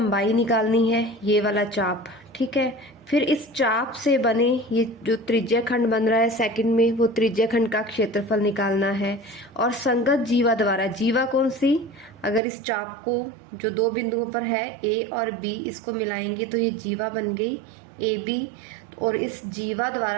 निकालनी है, ये वाला चाप, ठीक है। फिर इस चाप से बने ये जो त्रिज्या खंड बन रहा है सेकंड में, वो त्रिज्या खंड का क्षेत्रफल निकालना है। और संगत जीवा द्वारा, जीवा कौन सी, अगर इस चाप को जो दो बिंदुओं पर है ए और बी, इसको मिलाएंगे तो ये जीवा बन गई ए बी। और इस जीवा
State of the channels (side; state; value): left; drops out; at 12.4 s